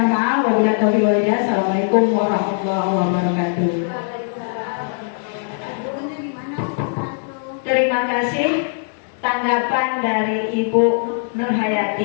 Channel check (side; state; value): right; silent; digital silence